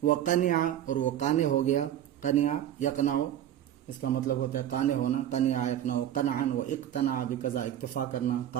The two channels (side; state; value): left; quieter; 11.2 dB